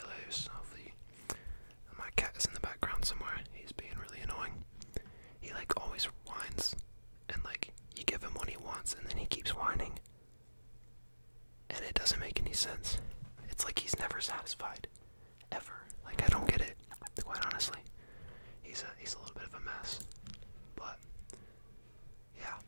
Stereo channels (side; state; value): both; inverted; correlation -1.00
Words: Hopefully, my cat is in the background somewhere. He's being really annoying. He always whines, and you give him what he wants, and then he keeps whining, and it doesn't make any sense. It's like he's never satisfied, ever. I don't get it, quite honestly. He's a little bit of a mess, but yeah.